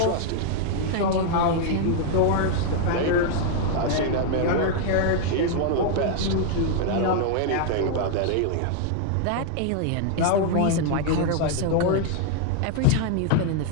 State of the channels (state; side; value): different; both; correlation 0.00